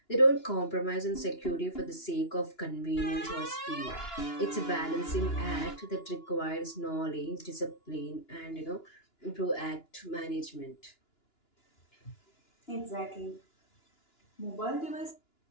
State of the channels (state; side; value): late; right; 2.9 ms